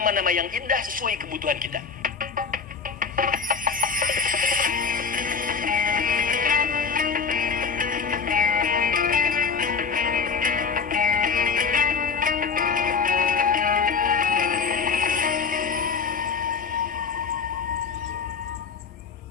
yang indah sesuai kebutuhan kita.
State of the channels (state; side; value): quieter; right; 5.4 dB